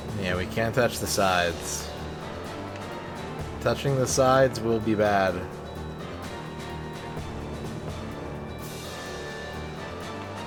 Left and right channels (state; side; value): identical; both; correlation 1.00